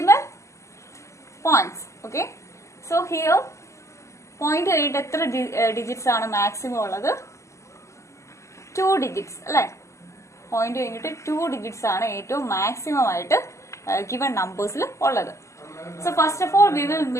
points. Okay. So here, point എത്ര digits ആണ് maximum ഉള്ളത്? 2 digits അല്ലേ? Point കഴിഞ്ഞിട്ട് 2 digits ആണ് ഏറ്റവും maximum ആയിട്ട് given numbers ഉള്ളത്. So first of all, we will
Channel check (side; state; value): right; late; 0.14 ms